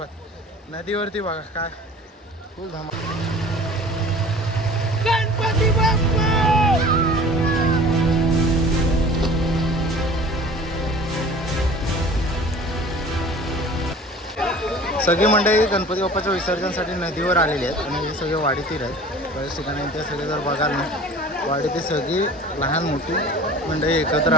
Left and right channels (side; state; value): both; normal; correlation 0.43